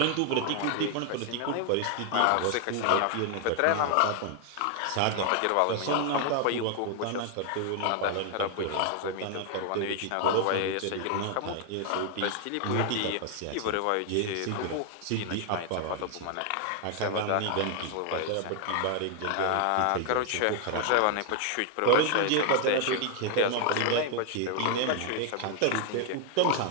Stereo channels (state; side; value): different; both; correlation 0.00